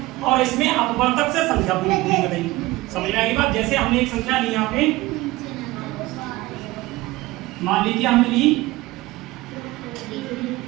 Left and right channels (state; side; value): quieter; left; 19.4 dB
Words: और इसमें अपवर्तक से संख्या पूरी कटेगी। समझ में आएगी बात? जैसे हमने एक संख्या ली यहाँ पे, मान लीजिए हमने ली